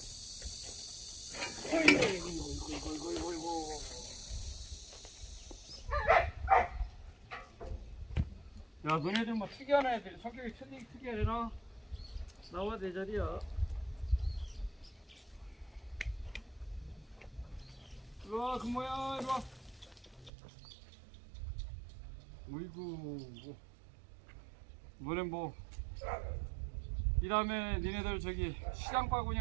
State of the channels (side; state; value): left; drops out; at 20.3 s